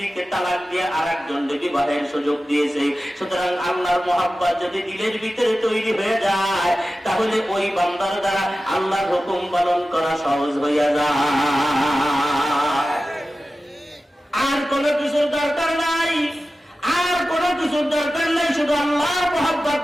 তালাক দিয়ে আরেকজনকে বিবাহের সুযোগ দিয়েছে। সুতরাং আল্লাহর মহব্বত যদি দিলের ভিতরে তৈরি হয়ে যায়, তাহলে ওই বান্দার দ্বারা আল্লাহর হুকুম পালন করা সহজ হইয়া যায়। আর কোনো কিছুর দরকার নাই, আর কোনো কিছুর দরকার নাই, শুধু আল্লাহর মহব্বত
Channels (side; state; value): both; normal; correlation 0.94